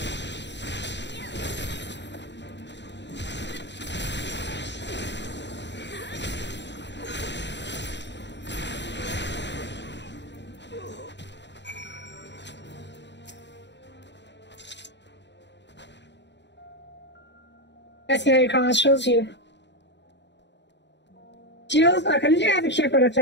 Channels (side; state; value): right; late; 0.52 ms